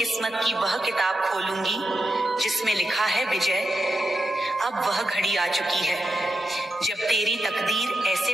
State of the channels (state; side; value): normal; both; correlation 0.86